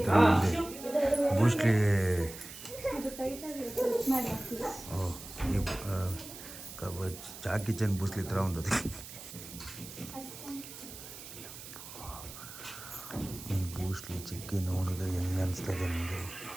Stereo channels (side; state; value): right; noise; hiss, 13 dB below the sound